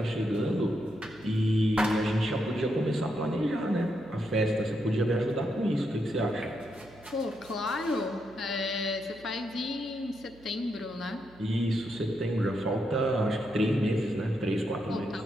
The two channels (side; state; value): right; noise; hum, 24 dB below the sound